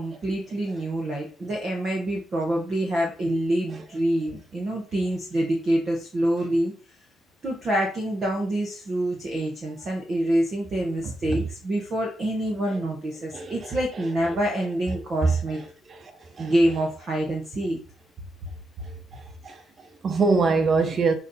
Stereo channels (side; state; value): both; normal; correlation 0.86